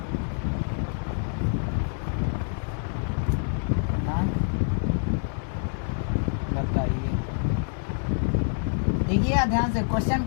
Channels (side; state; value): right; silent; digital silence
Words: बताइए। देखिए ध्यान से, क्वेश्चन